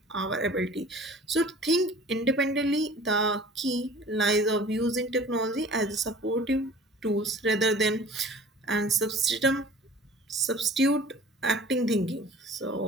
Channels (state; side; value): normal; both; correlation 0.45